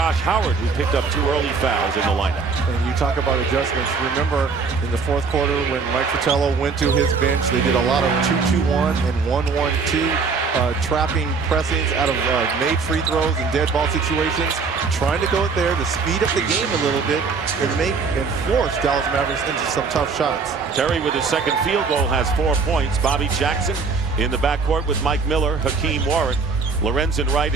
Howard, who picked up 2 early fouls in the lineup. And you talk about adjustments. Remember in the fourth quarter when Mike Fratello went to his bench, they did a lot of 2-2-1 and 1-1-2. trapping pressings out of made free throws and dead ball situations, trying to go there to speed up the game a little bit and force Dallas Mavericks into some tough shots. Terry with his second field goal has 4 points. Bobby Jackson in the backcourt with Mike Miller, Hakeem Warwick, Lorenzen Wright,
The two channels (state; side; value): quieter; left; 4.9 dB